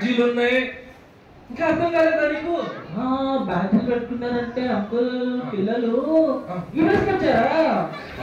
ఉన్నాయి. ఇంకా అర్థం కాలేదా నీకు? బ్యాడ్జీలు పెట్టుకున్నారంటే అంకుల్ పిల్లలు వచ్చారా?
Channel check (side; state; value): both; identical; correlation 1.00